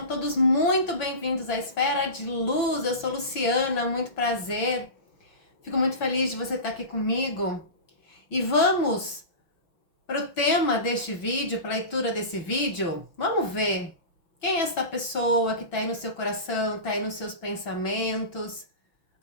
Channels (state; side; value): late; right; 6.0 ms